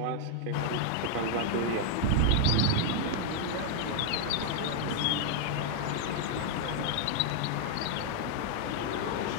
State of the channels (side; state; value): both; different; correlation 0.00